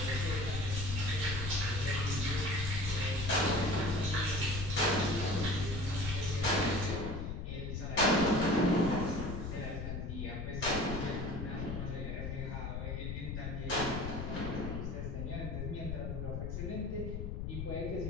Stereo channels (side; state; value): left; noise; rumble, 4 dB below the sound